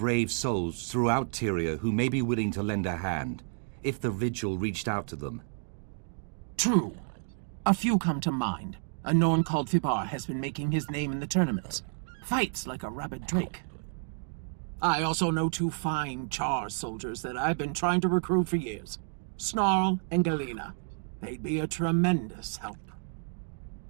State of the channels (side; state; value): left; silent; 58 dB below the other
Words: souls throughout Tyria who may be willing to lend a hand, if the vigil reached out to them. True. A few come to mind. A Norn called Fibar has been making his name in the tournaments. Fights like a rabid drake. I also know 2 fine Char soldiers that I've been trying to recruit for years. Snarl and Galena. They'd be a tremendous help.